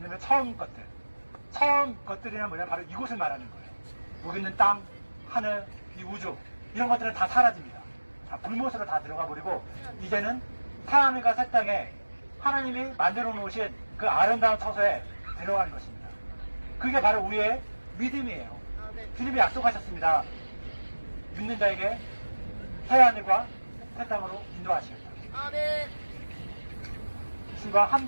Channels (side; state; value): both; inverted; correlation -1.00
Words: 처음 것들이란 뭐냐, 바로 이곳을 말하는 거예요. 여기 있는 땅, 하늘, 이 우주 이런 것들은 다 사라집니다. 다 불못으로 다 들어가 버리고 이제는 하나님과 새 땅에 하나님이 만들어 놓으신 그 아름다운 처소에 들어가는 것입니다. 그게 바로 우리의 믿음이에요. 주님이 약속하셨습니다. 믿는 자에게 새 하늘과 새 땅으로 인도하시겠다. 아멘. 주가 한